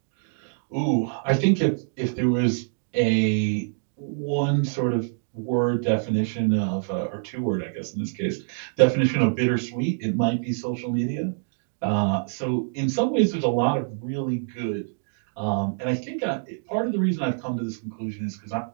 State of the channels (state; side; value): silent; left; digital silence